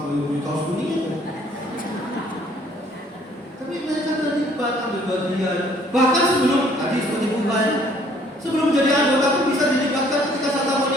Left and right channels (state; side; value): normal; both; correlation 0.60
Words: beli kaos kuning itu. Tapi mereka terlibat ambil bagian. Bahkan sebelum tadi seperti bukan, sebelum menjadi anggota pun bisa dilibatkan ketika Santa